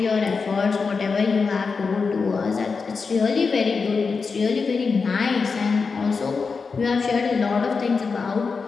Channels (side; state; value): right; quieter; 4.9 dB